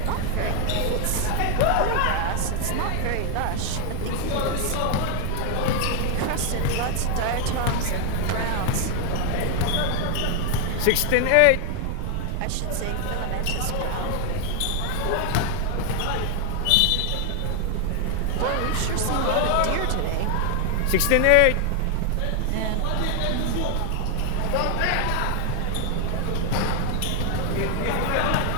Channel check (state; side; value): different; both; correlation 0.00